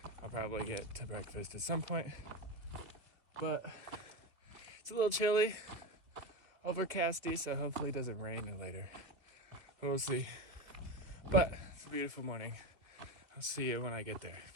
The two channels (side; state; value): left; late; 2.4 ms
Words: I'll probably get to breakfast at some point. But it's a little chilly, overcasty, so hopefully it doesn't rain later. We'll see. But it's a beautiful morning. I'll see you when I get there.